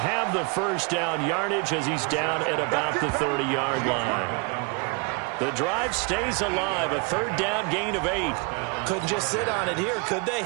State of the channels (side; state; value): left; quieter; 32.8 dB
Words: the first down yardage as he's down at about the 30-yard line. The drive stays alive, a 3rd down gain of 8. Couldn't just sit on it here, could they?